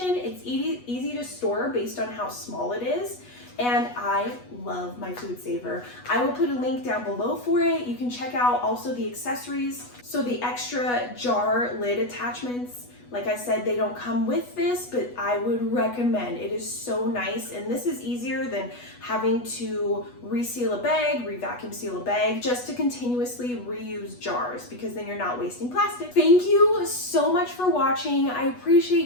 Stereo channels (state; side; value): late; right; 8.2 ms